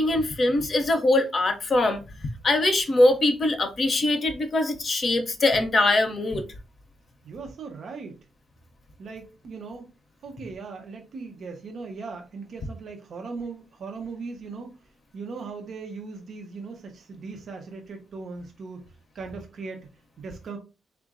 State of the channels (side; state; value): both; normal; correlation 0.84